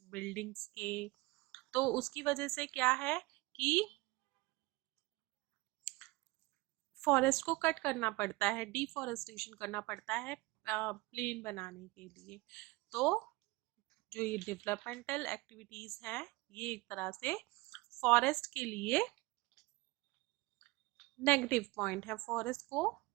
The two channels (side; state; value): left; quieter; 22.4 dB